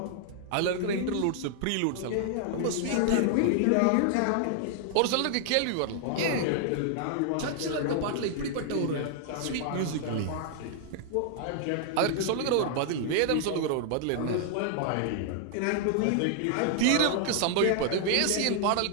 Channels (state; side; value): different; both; correlation 0.00